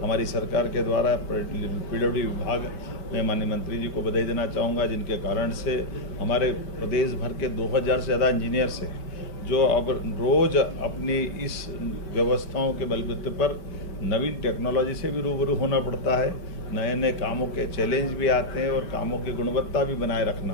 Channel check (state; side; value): late; right; 5.1 ms